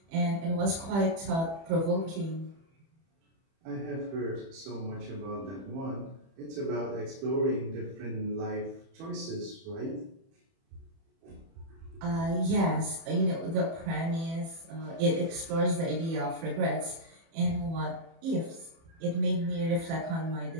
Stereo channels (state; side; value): late; left; 30 ms